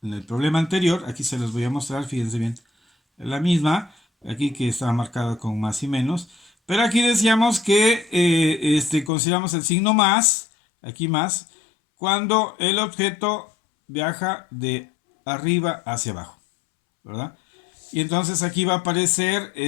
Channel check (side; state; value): right; drops out; at 9.1 s